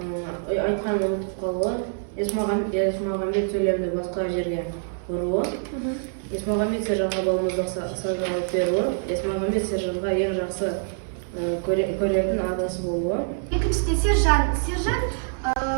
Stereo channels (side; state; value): left; silent; 62 dB below the other